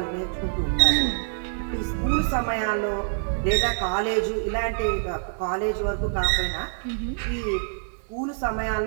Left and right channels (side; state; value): left; silent; digital silence